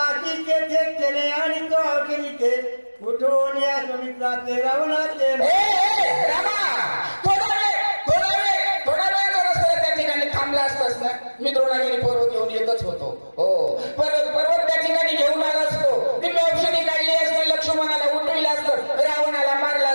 की तेथे केले आणि तो केली ते उठून या सुमित्राचे रावणाचे रामा थोडा वेळ जर असतं त्या ठिकाणी थांबला असतास ना मी द्रोणागिरी पर्वत घेऊन येतच होतो हो पर्वत त्या ठिकाणी घेऊन आला असतो ती औषधी काढली असते लक्ष्मणाला उठविलं असतं रावणाला मारलं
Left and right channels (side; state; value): both; inverted; correlation -1.00